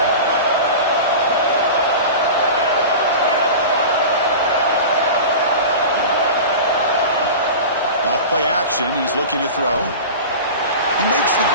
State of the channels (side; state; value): both; inverted; correlation -0.31